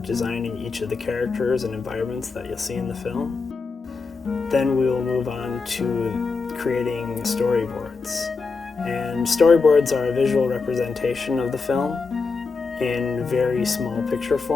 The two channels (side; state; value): right; quieter; 4.5 dB